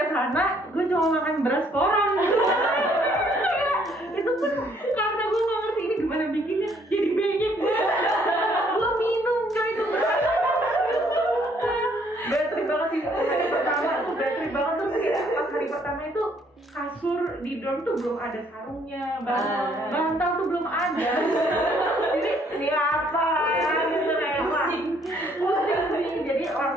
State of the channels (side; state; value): both; normal; correlation 0.65